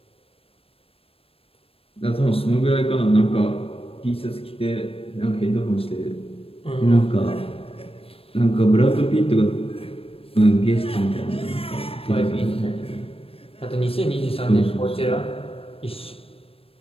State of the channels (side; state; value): right; late; 0.28 ms